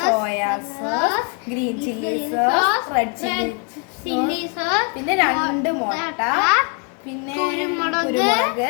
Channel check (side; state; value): right; quieter; 36.5 dB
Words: soya sauce, green chilli sauce, red chilli sauce, പിന്നെ 2 മുട്ട, പിന്നെ